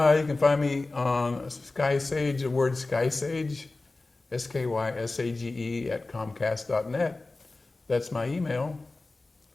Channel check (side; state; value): right; quieter; 3.3 dB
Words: can find me on Sky Sage, the word Sky Sage, SKYSAGE at Comcast.net. That's my email.